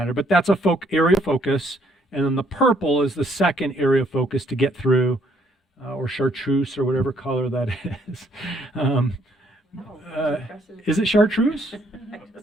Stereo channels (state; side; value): normal; both; correlation 0.67